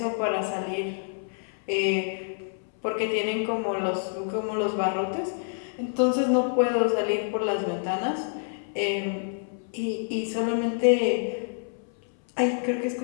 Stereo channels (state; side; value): silent; right; 60 dB below the other